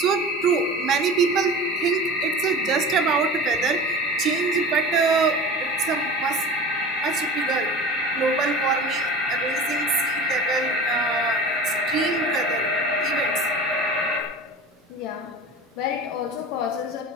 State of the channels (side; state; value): both; normal; correlation 0.35